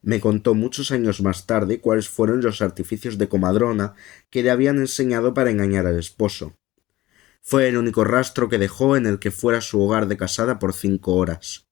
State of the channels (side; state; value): right; quieter; 17.0 dB